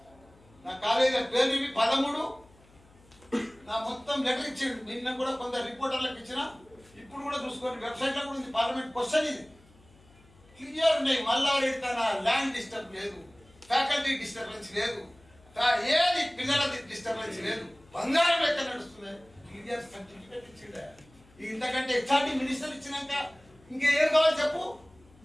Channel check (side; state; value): left; noise; hum, 27 dB below the sound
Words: నా కాలేజీ పేరు 13 నా మొత్తం లెటర్ ఇచ్చిండు. నిన్న కూడా కొందరు రిపోర్టర్లకు ఇచ్చిన, ఇప్పుడు కూడా చూసుకోండి వెబ్సైట్ లో కూడా ఉంది. పార్లమెంట్ క్వశ్చన్ ఇది క్లియర్ ఉన్నాయి. మల్లారెడ్డి తన ల్యాండ్ డిస్టర్బ్ లేదు, ఫ్యాకల్టీ డిస్టర్బెన్స్ లేదు, ఏది పిల్లల డిస్టర్బెన్స్ లేదు, బంగారం లెక్క నడుస్తుంది. క్లియర్ సర్టిఫికేట్ ఇచ్చిండ. ఇంతకంటే హెచ్ఆర్డి మినిస్టర్ ఇచ్చినాక ఇంకేం కావాలి చెప్పు,